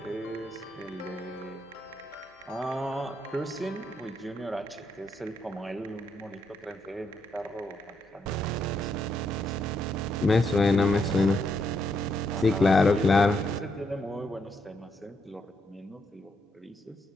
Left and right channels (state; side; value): normal; both; correlation 0.78